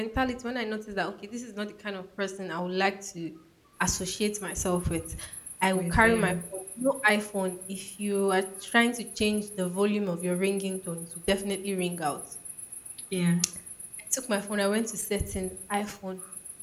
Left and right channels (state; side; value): identical; both; correlation 1.00